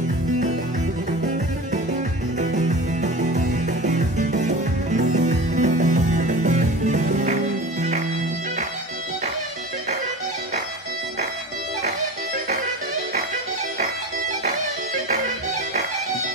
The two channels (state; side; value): normal; both; correlation 0.33